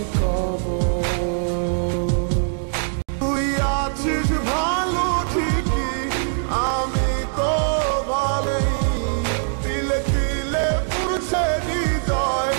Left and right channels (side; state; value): left; silent; digital silence